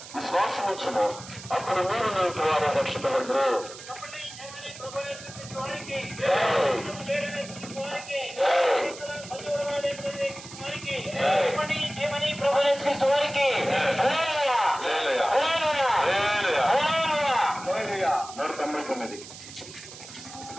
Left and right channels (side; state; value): right; noise; hiss, 15 dB below the sound